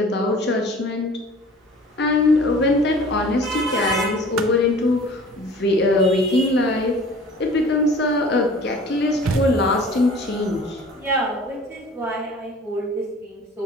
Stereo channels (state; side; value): normal; both; correlation 0.46